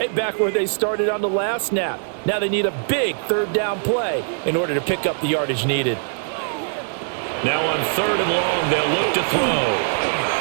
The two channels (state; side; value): silent; left; digital silence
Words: back where they started on the last snap. Now they need a big 3rd down play in order to pick up the yardage needed. Now on 3rd and long, they'll look to